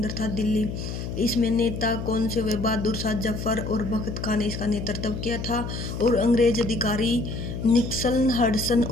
था दिल्ली। इसमें नेता कौन से हुए? बहादुर शाह जफर और बख्त खान ने इसका नेतृत्व किया था। और अंग्रेज अधिकारी निक्सन, हडसन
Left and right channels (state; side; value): noise; left; hum, 6 dB below the sound